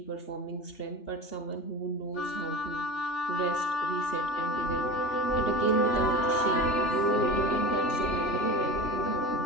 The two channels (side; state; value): right; late; 3.4 ms